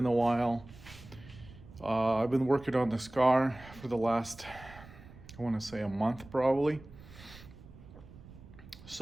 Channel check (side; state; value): right; noise; rumble, 19 dB below the sound